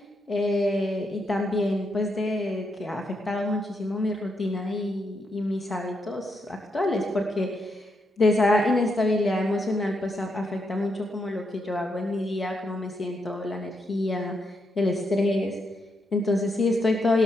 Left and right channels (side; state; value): both; normal; correlation 0.80